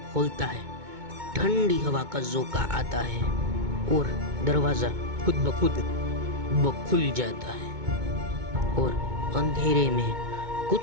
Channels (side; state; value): left; late; 2.2 ms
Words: है, ठंडी हवा का झोंका आता है और दरवाजा खुद ब खुद खुल जाता है और अंधेरे में